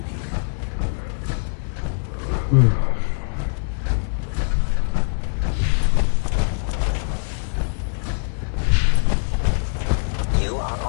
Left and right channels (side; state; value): right; silent; digital silence